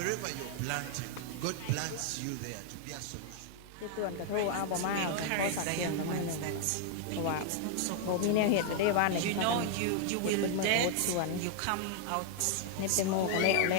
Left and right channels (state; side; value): different; both; correlation 0.00